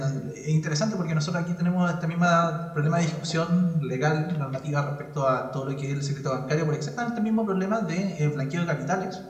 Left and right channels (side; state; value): both; identical; correlation 1.00